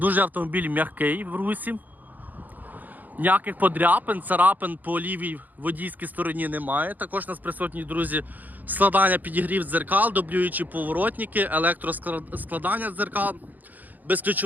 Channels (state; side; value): late; left; 0.083 ms